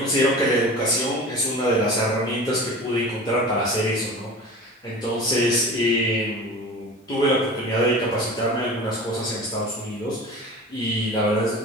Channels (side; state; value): both; normal; correlation 0.36